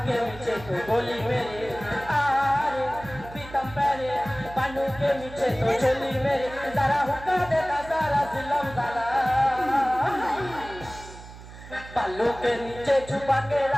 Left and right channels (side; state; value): right; noise; hum, 16 dB below the sound